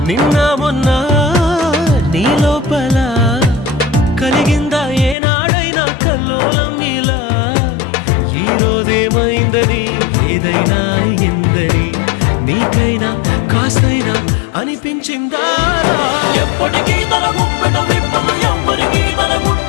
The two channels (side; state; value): right; drops out; at 5.2 s